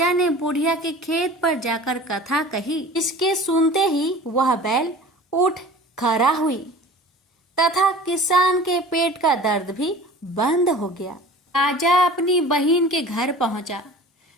ने बुढ़िया के खेत पर जाकर कथा कही। इसके सुनते ही वह बैल उठ खड़ा हुई तथा किसान के पेट का दर्द भी बंद हो गया। राजा अपनी बहन के घर पहुंचा।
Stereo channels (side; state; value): both; normal; correlation 0.42